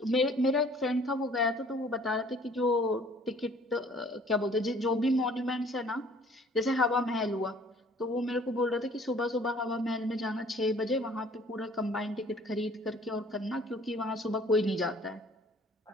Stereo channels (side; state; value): both; normal; correlation 0.55